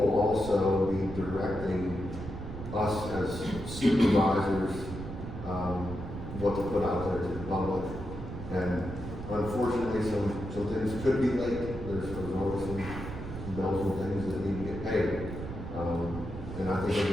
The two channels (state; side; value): noise; right; rumble, 9 dB below the sound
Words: also be directing us as supervisors, what to put out there to the public. And unfortunately, some things could be late. There's always some bells and things that need to get paid. And I think we'll